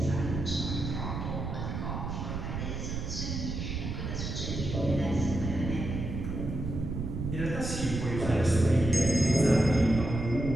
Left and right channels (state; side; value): noise; right; rumble, 4 dB below the sound